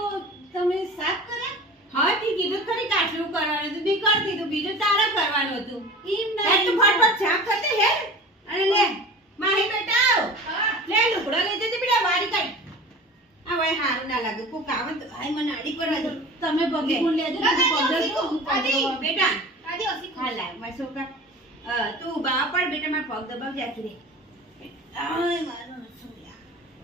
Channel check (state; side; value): normal; both; correlation 0.37